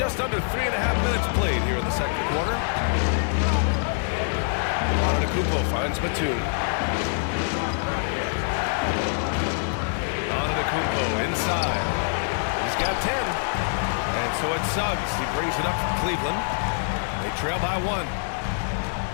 under 3.5 minutes played here in the second quarter. Antetokounmpo finds Batum. Antetokounmpo inside. He's got 10. And so it's Suggs. He brings it up from Cleveland. They trail by 1.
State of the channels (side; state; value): right; silent; 60 dB below the other